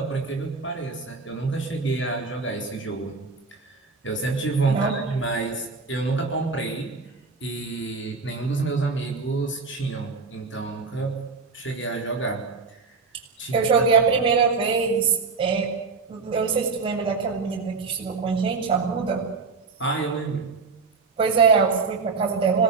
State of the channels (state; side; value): quieter; left; 4.6 dB